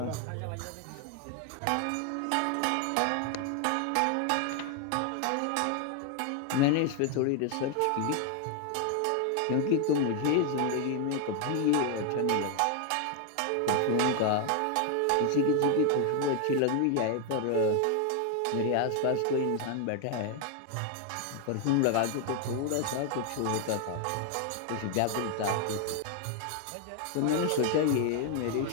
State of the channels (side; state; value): both; different; correlation 0.01